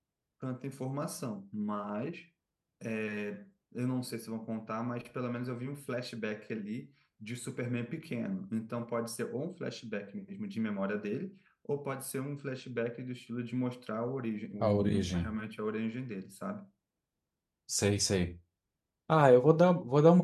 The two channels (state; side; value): identical; both; correlation 1.00